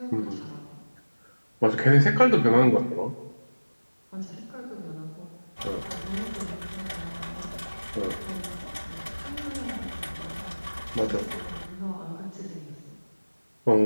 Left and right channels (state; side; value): inverted; both; correlation -1.00